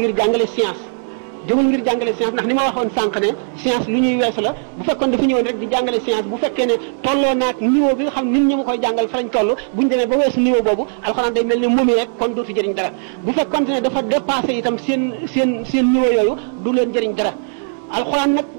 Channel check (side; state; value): left; silent; 67 dB below the other